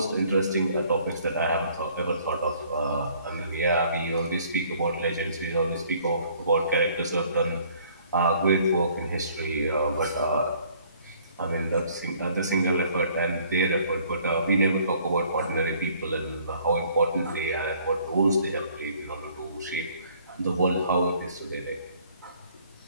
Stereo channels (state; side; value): inverted; both; correlation -0.59